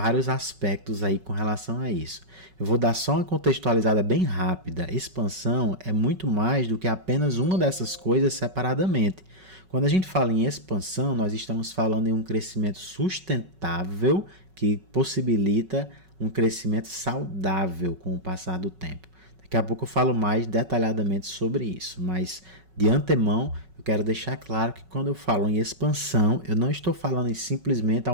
aspectos aí com relação a isso. Eu vou dar só uma contextualizada bem rápida. Expansão é muito mais do que apenas uma dessas coisas separadamente. Quando a gente fala em expansão, nós estamos falando em um crescimento sustentável que possibilita um crescimento saudável com o passar do tempo. Daqui a pouco eu falo mais detalhadamente sobre isso, mas de antemão eu quero deixar claro que quando eu falo em expansão, eu não estou falando em simplesmente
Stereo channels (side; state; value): left; late; 5.3 ms